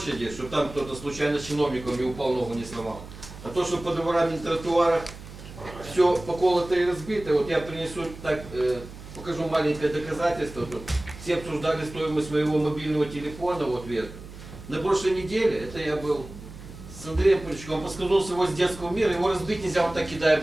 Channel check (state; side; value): noise; right; hum, 15 dB below the sound